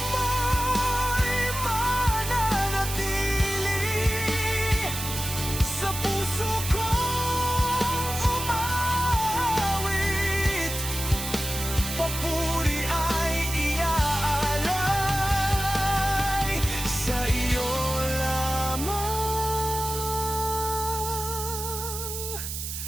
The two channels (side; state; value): right; noise; hiss, 6 dB below the sound